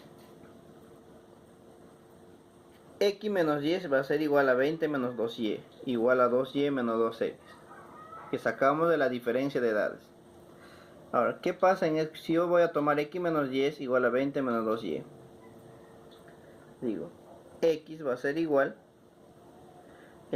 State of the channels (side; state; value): both; identical; correlation 1.00